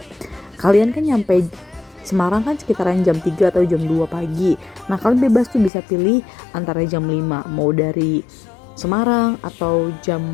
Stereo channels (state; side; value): drops out; right; at 5.7 s